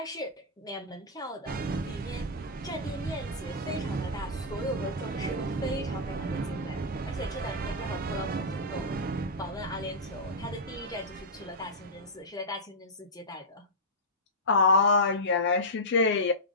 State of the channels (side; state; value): both; normal; correlation -0.10